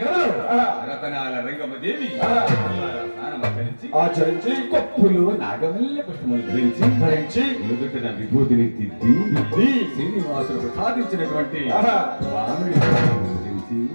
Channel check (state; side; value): inverted; both; correlation -1.00